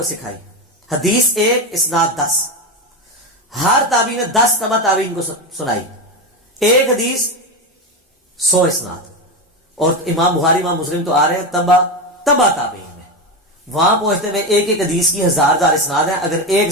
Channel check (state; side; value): normal; both; correlation 0.16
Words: سکھائی. حدیث 1 اسناد 10, ہر تابعی نے 10 تبع تابعین کو سنائی. ایک حدیث 100 اسناد. اور امام بخاری امام مسلم تو آ رہے ہیں تبع تابعین میں, وہاں پہنچتے ہوئے ایک ایک حدیث کی 1000 اسناد ہیں. اگر ایک